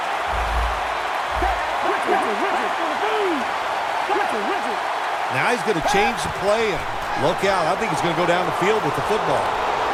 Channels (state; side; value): identical; both; correlation 1.00